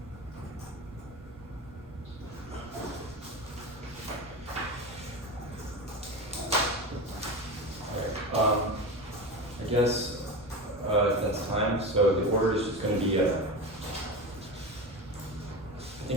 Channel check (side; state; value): both; normal; correlation 0.25